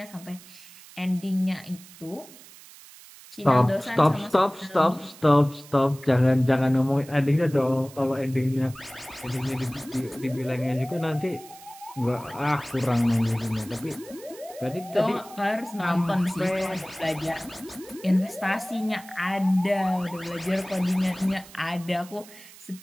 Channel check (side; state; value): right; noise; hiss, 20 dB below the sound